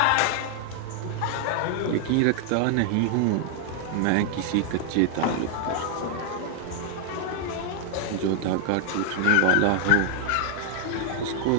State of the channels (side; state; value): both; different; correlation 0.00